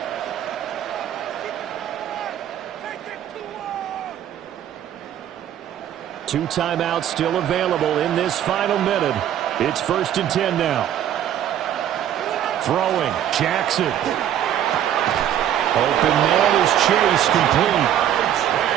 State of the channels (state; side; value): quieter; left; 10.7 dB